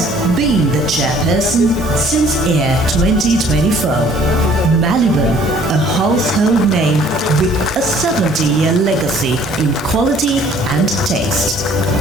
being the chairperson since year 2024. Maliban, a household name with a 70-year legacy in quality and taste.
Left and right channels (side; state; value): both; normal; correlation 0.56